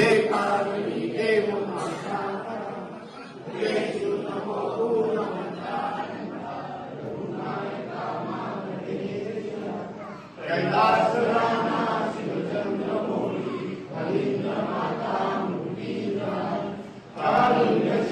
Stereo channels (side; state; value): both; identical; correlation 1.00